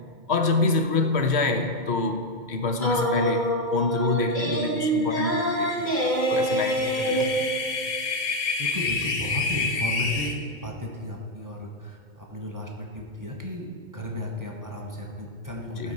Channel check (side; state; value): left; late; 2.1 ms